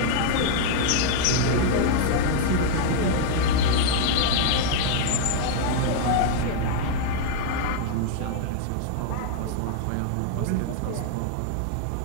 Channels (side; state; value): both; different; correlation -0.01